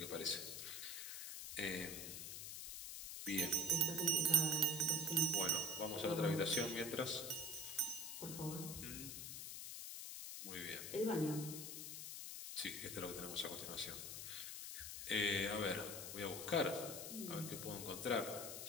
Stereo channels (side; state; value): left; noise; hiss, 6 dB below the sound